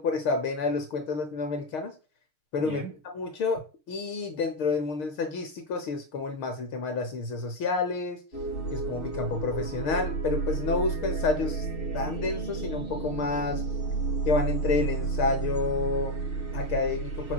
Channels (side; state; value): right; late; 6.5 ms